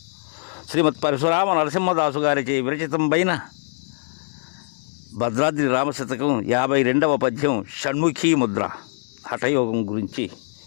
శ్రీమత్ పరశురామ నరసింహదాసు గారిచే విరచితంపైన భద్రాద్రి రామశతకం 52వ పద్యం షణ్ముఖీ ముద్ర హఠయోగం గురించి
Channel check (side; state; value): right; silent; digital silence